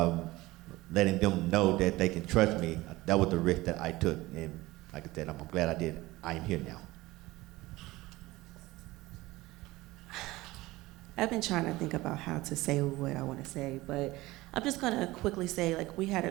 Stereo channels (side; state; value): left; quieter; 19.2 dB